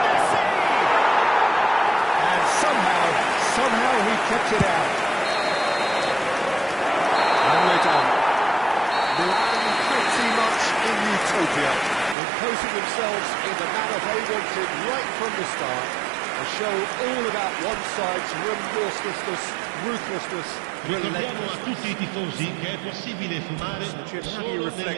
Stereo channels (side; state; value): left; drops out; at 12.2 s